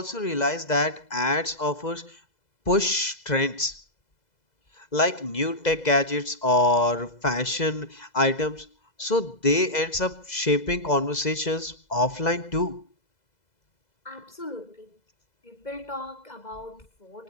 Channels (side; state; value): right; late; 2.0 ms